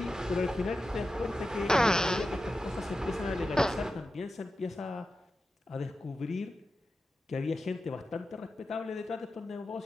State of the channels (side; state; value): both; normal; correlation 0.92